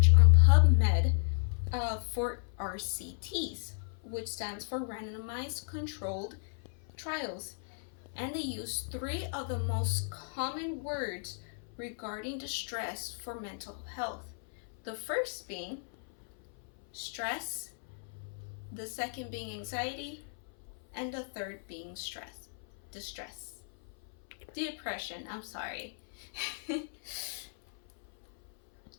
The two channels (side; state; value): right; silent; 55 dB below the other